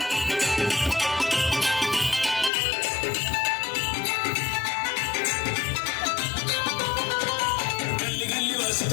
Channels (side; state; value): right; drops out; at 2.5 s